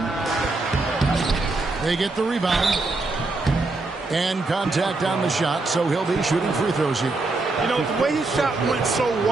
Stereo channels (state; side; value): quieter; left; 3.3 dB